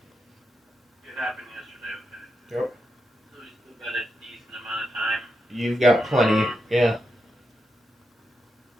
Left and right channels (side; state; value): both; normal; correlation 0.86